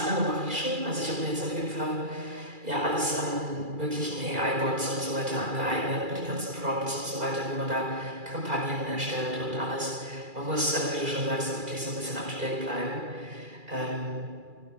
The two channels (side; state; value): left; late; 2.4 ms